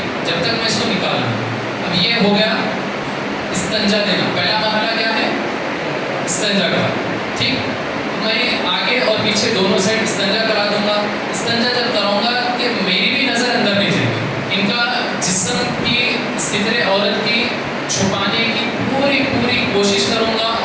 جب تک میں اس کو نکالوں. اب یہ ہو گیا استنجا دینا. پہلا مرحلہ کیا ہے؟ استنجا کرا. ٹھیک، میں آگے اور پیچھے دونوں سائڈ استنجا کرا دوں گا. استنجا جب کراؤں گا کہ میری بھی نظر اندر نہیں جائے گی، ان کا جسم کی ستر عورت کی چھپانے کی پوری کوشش کروں گا،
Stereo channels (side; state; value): both; identical; correlation 1.00